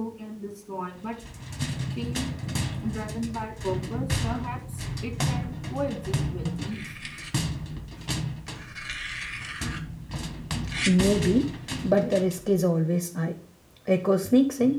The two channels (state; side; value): identical; both; correlation 1.00